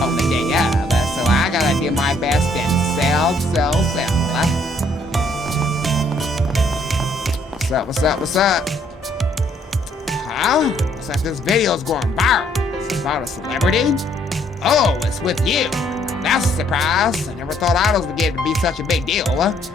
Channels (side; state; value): both; normal; correlation 0.66